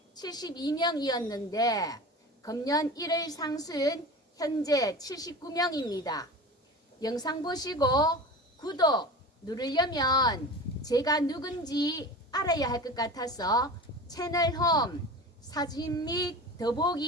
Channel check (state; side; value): normal; both; correlation 0.33